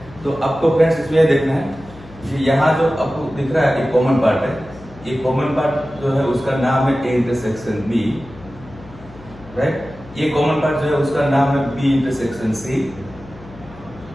तो आपको फ्रेंड्स इसमें यह देखना है कि यहाँ जो आपको दिख रहा है एक कॉमन पार्ट है। ये कॉमन पार्ट जो है उसका नाम है ए इंटरसेक्शन बी, राइट। ये कॉमन पार्ट जो है उसका नाम है बी इंटरसेक्शन सी,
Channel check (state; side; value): noise; left; hum, 20 dB below the sound